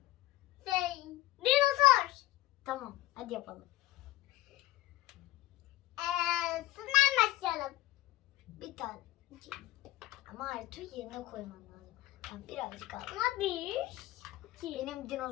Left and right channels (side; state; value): right; quieter; 16.8 dB